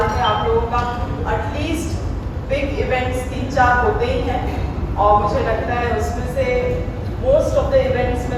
में आप लोगों का एटलीस्ट बिग इवेंट्स 3-4 होते ही हैं और मुझे लगता है उसमें से मोस्ट ऑफ द इवेंट्स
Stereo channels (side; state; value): both; identical; correlation 1.00